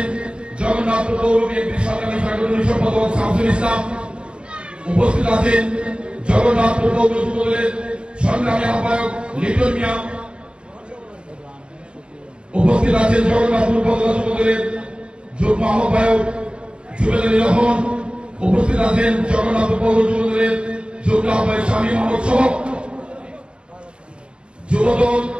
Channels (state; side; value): late; left; 0.054 ms